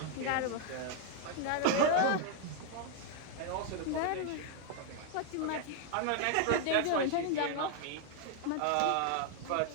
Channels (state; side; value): different; both; correlation 0.00